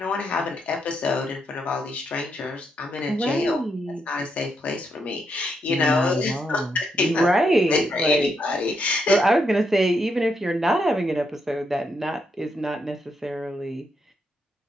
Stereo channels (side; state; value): both; normal; correlation 0.80